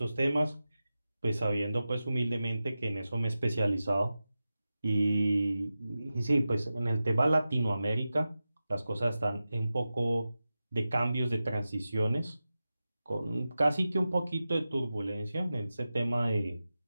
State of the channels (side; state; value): both; inverted; correlation -0.93